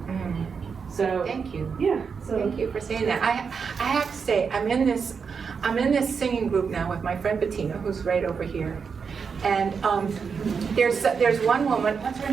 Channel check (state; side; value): quieter; left; 5.9 dB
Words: So Thank you. yeah, so Thank you for saying that. I have to say, I'm in this singing group now with my friend Bettina, who's right over here. And there's one woman, what's her